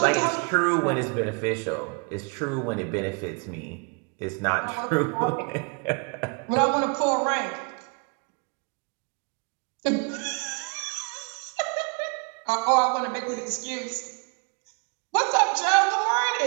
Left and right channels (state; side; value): quieter; left; 34.8 dB